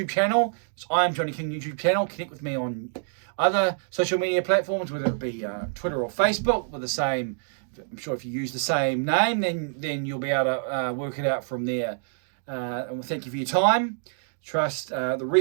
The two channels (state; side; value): silent; left; digital silence